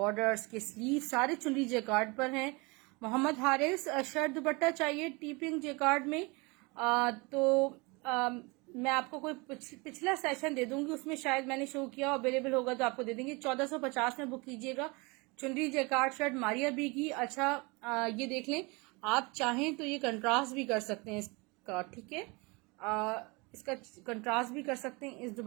के स्लीव सारे चुनरी जेकार्ड पर हैं। मोहम्मद हारिस शर्ट दुपट्टा चाहिए टी पिंक जेकार्ड में, मैं आपको कोई पिछला सेशन दे दूंगी, उसमें शायद मैंने शो किया, अवेलेबल होगा तो आपको दे देंगे। 1450 में बुक कीजिएगा चुनरी जेकार्ड शर्ट मारिया बी की। अच्छा, ये देख लें, आप चाहें तो ये कंट्रास्ट भी कर सकते हैं इसका, ठीक है। इसका कंट्रास्ट भी कर सकते हैं, इस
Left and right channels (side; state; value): left; quieter; 27.2 dB